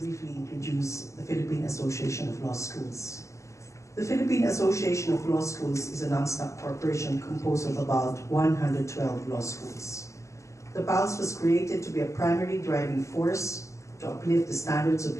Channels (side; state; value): right; late; 0.15 ms